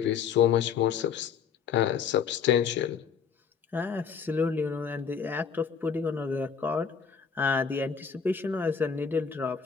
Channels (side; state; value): right; quieter; 6.7 dB